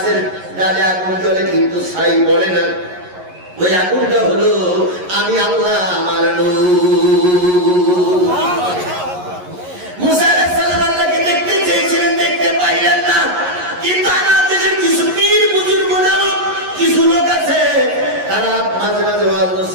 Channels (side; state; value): left; late; 11 ms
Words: ডালে আগুন জ্বলে কিন্তু ছাই পড়ে না, ওই আগুনটা হলো আমি আল্লাহ, আমার নূর। মুসা আলাইহিস সালাম আল্লাহকে দেখতে চেয়েছিলেন, দেখতে পাইলেন না। কিন্তু আমার দেশের কিছু পীর বুজুর্গ নামক কিছু লোক আছে, তারা মাঝে মাঝে ওয়াজ